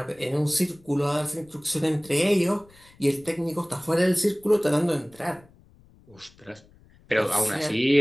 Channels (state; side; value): noise; left; rumble, 28 dB below the sound